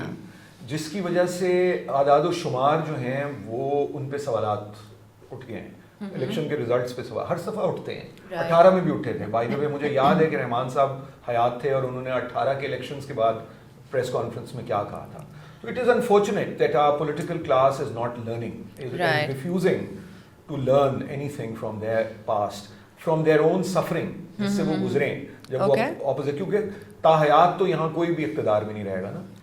جس کی وجہ سے اعداد و شمار جو ہیں وہ ان پہ سوالات اٹھ گئے ہیں. الیکشن کے ریزلٹس پہ سوال ہر دفعہ اٹھتے ہیں, 18 میں بھی اٹھے تھے. بائی دا وے مجھے یاد ہے کہ رحمان صاحب حیات تھے اور انہوں نے 18 کے الیکشنز کے بعد پریس کانفرنس میں کیا کہا تھا. So it is unfortunate that our political class is not learning, is refusing to learn anything from their past, from their own suffering, جس سے وہ گزریں جب وہ اپوزٹ, کیونکہ تاحیات تو یہاں کوئی بھی اقتدار میں نہیں رہے گا نا.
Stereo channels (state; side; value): identical; both; correlation 1.00